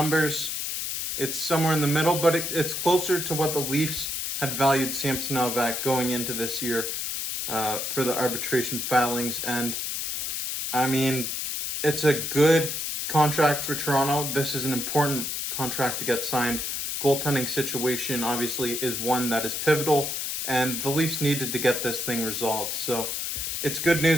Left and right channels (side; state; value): left; noise; hiss, 2 dB below the sound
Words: it's somewhere in the middle, but it's closer to what the Leafs had valued Samsonov at going into this year for the arbitration filings. And I mean, it's a good contract for Toronto. This is an important contract to get signed. Goaltending situation obviously is one that is pivotal, and the Leafs needed to get this thing resolved. So it's good